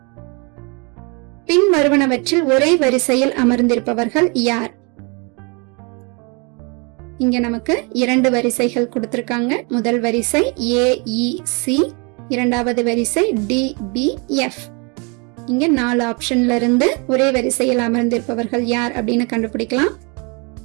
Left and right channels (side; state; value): left; quieter; 31.9 dB